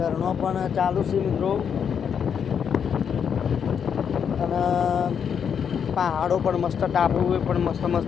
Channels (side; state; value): right; quieter; 7.5 dB